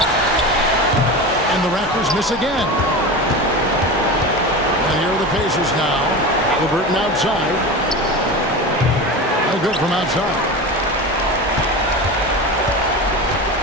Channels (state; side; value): normal; both; correlation 0.27